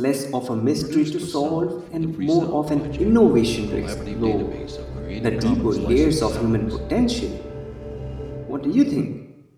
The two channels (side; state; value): both; identical; correlation 1.00